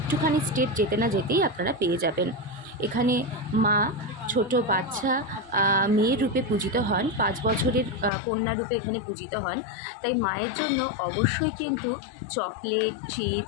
স্টেপ যেতে না যেতেই আপনারা পেয়ে যাবেন। এখানে মা ছোট বাচ্চা মেয়ের রূপে পূজিত হন, 5 বছরের কন্যা রূপে এখানে পূজিত হন। তাই মায়ের জন্য অবশ্যই কিন্তু চকলেট,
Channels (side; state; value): right; drops out; at 8.1 s